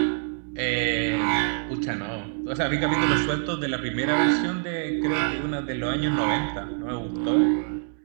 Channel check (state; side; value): silent; left; digital silence